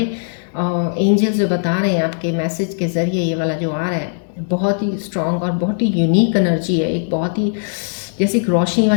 एंजल्स जो बता रहे हैं आपके मैसेज के ज़रिए, ये वाला जो आ रहा है बहुत ही स्ट्रांग और बहुत ही यूनिक एनर्जी है, एक बहुत ही जैसे एक रोशनी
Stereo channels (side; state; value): right; silent; digital silence